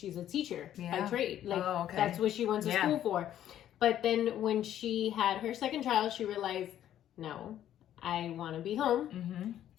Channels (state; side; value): quieter; right; 11.4 dB